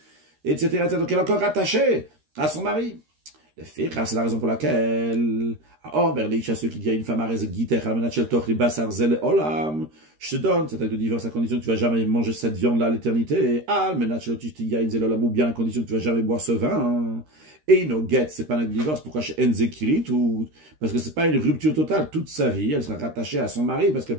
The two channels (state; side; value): late; left; 13 ms